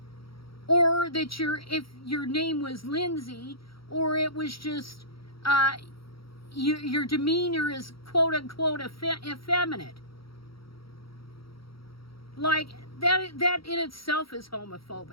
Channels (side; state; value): right; late; 0.75 ms